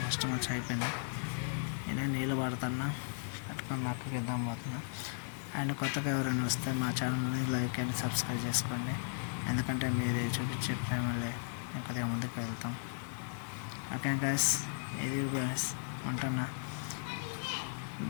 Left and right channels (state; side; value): silent; right; digital silence